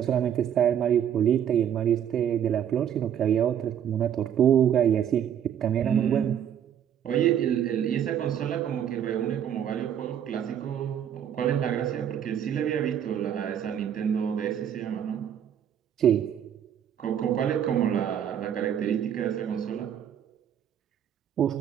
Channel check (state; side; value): quieter; left; 9.4 dB